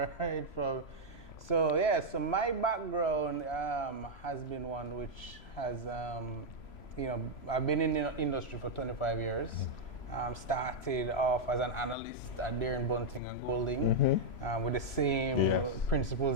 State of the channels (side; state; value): right; late; 3.0 ms